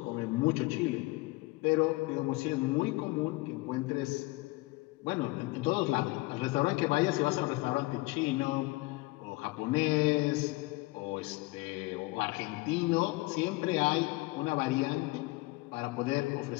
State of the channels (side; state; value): right; quieter; 22.6 dB